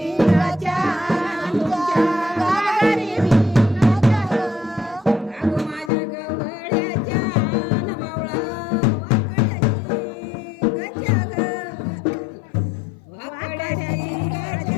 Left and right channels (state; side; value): drops out; right; at 5.9 s